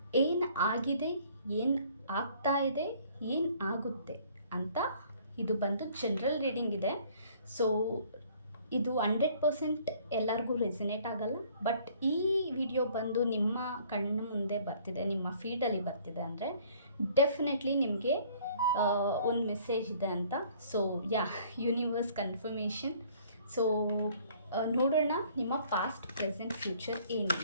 ಏನು ಆಗಿದೆ, ಏನು ಆಗ್ತಾ ಇದೆ, ಏನು ಆಗುತ್ತೆ ಅಂತ. ಇದು ಬಂದು ಜನರಲ್ ರೀಡಿಂಗ್ ಇದೆ. ಸೊ ಇದು 100% ಎಲ್ಲರಿಗೂ ರೆಸಿನೇಟ್ ಆಗಲ್ಲ. ಬಟ್ ಈ ವಿಡಿಯೋ ಬಂದು ನಿಮ್ಮ ಕಣ್ಣು ಮುಂದೆ ಬರ್ತಿದೆ, ನಿಮ್ಮ ಫೀಡಲ್ಲಿ ಬರ್ತಿದೆ ಅಂದರೆ ಡೆಫಿನೆಟ್ಲಿ ನಿಮಗೆ ಒಂದು ಮೆಸೇಜ್ ಇದೆ ಅಂತ. So universe confirmation. ಸೊ ನೋಡೋಣ ನಿಮ್ಮ ಪಾಸ್ಟ್, ಪ್ರೆಸೆಂಟ್, ಫ್ಯೂಚರ್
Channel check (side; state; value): both; inverted; correlation -0.57